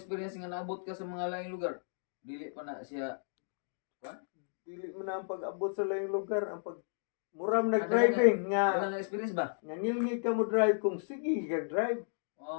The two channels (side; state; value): right; silent; digital silence